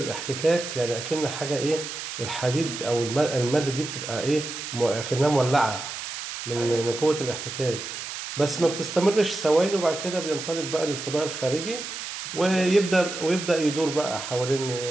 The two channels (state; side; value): noise; right; hiss, 7 dB below the sound